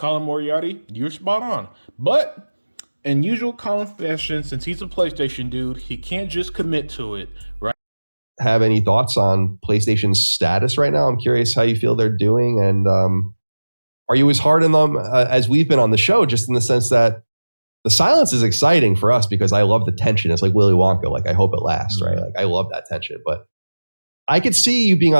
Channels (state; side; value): inverted; both; correlation -1.00